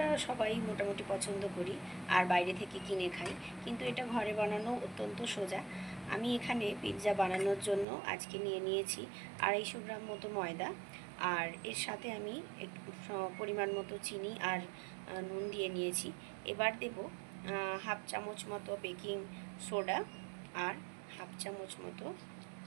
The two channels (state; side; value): drops out; left; at 7.9 s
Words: সবাই মোটামুটি পছন্দ করি আর বাইরে থেকে কিনে খাই, কিন্তু এটা ঘরে বানানো অত্যন্ত সোজা। আমি এখানে পিৎজা বানানোর জন্য আজকে নিয়ে নিয়েছি 250 গ্রাম মতো ময়দা, আর এর সাথে আমি একটু পরিমাণ মতো চিনি আর নুন দিয়ে নিয়েছি। এবার দেব হাফ চামচ মতো বেকিং সোডা আর হাফ চামচ মতো